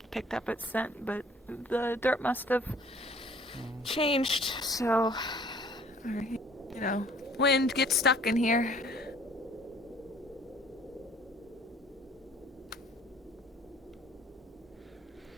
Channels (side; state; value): both; normal; correlation 0.55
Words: Picked up its scent, but the dirt must have changed, so, you know, wind gets stuck in here.